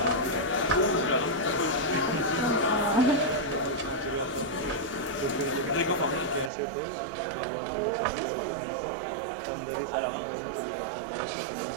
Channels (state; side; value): drops out; left; at 6.5 s